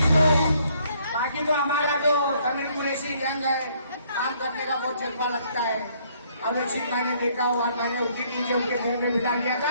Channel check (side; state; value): both; inverted; correlation -0.66